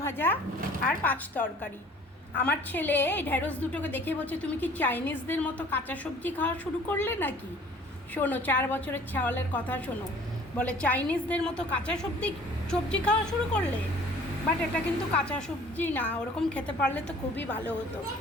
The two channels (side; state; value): both; normal; correlation 0.51